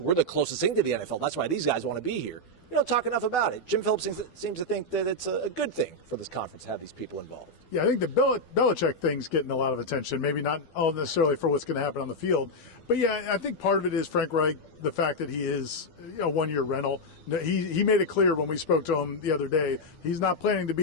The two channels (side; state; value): right; late; 12 ms